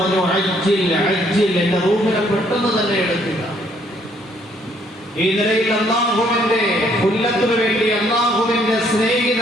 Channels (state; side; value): normal; both; correlation 0.66